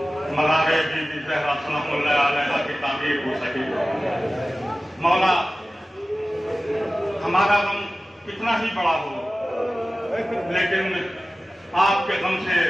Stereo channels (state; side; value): normal; both; correlation 0.96